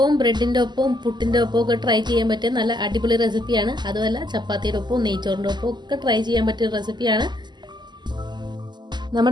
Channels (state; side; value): late; left; 0.21 ms